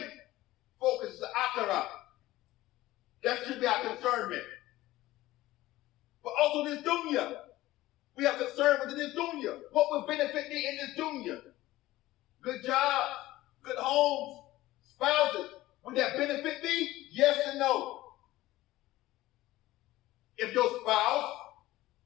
focus, is the akhirah. That should be our concernment. But also this dunya. We have concern with this dunya. What will benefit me in this dunya? Good jobs, good homes, spouses. Would that benefit me? Yes and no. If your spouse,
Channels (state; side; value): quieter; right; 16.8 dB